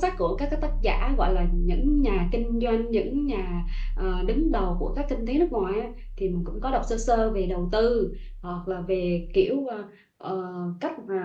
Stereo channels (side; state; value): both; identical; correlation 1.00